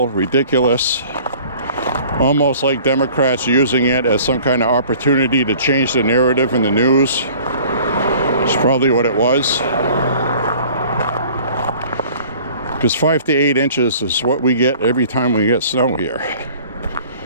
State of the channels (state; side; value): inverted; both; correlation -0.49